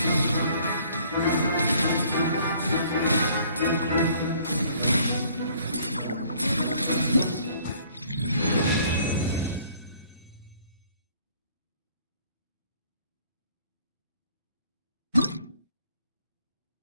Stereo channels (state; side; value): inverted; both; correlation -0.59